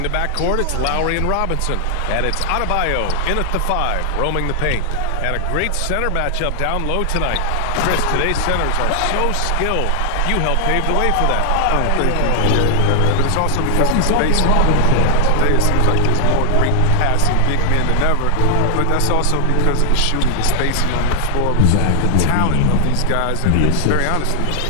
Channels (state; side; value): different; both; correlation 0.00